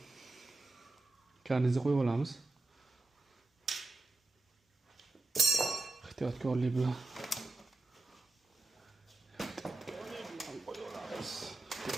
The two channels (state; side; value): quieter; left; 3.1 dB